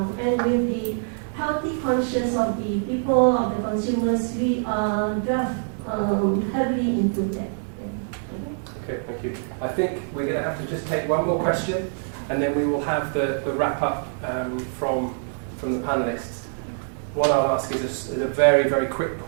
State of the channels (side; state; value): left; silent; digital silence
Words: And with the healthy conscience of the people, of the consumers, we are heavily into that. Okay, thank you. I think we're going to have to just take one more question, and then we will have the wrap up from the panelists. What I'll ask is a very, very quick